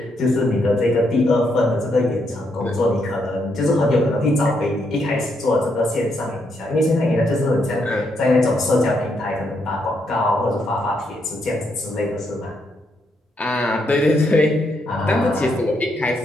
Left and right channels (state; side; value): normal; both; correlation 0.77